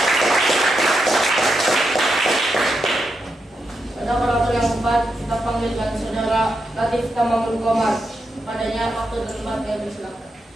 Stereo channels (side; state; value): both; normal; correlation 0.85